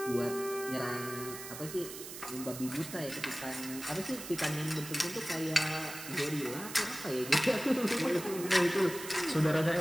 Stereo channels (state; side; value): noise; right; hiss, 10 dB below the sound